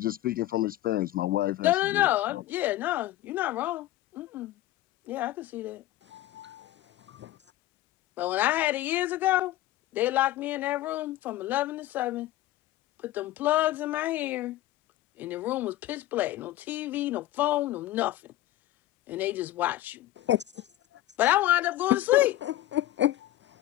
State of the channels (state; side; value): quieter; right; 14.9 dB